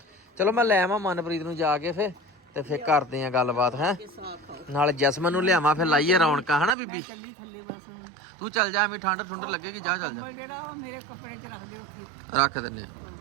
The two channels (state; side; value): drops out; left; at 6.8 s